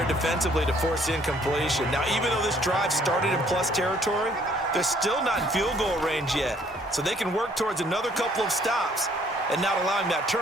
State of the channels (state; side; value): normal; both; correlation 0.62